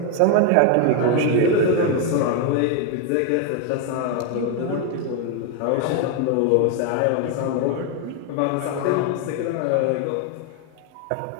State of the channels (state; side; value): different; both; correlation 0.01